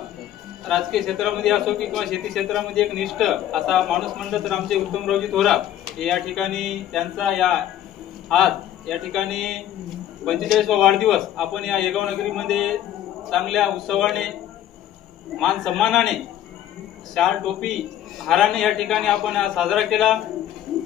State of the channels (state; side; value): quieter; right; 11.7 dB